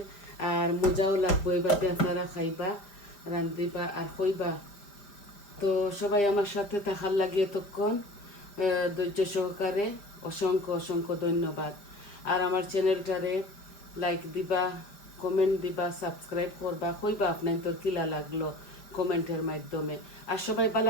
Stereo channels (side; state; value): right; late; 5.0 ms